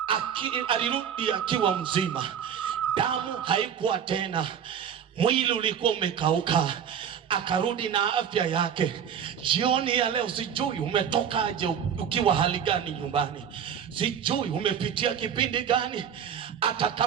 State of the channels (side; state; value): left; quieter; 8.4 dB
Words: alirudi akiwa mzima. Damu haikuwa tena, mwili ulikuwa umekauka, akarudi na afya yake. Jioni ya leo sijui umetokaje, ukiwa hali gani nyumbani, sijui umepitia kipindi gani. Hata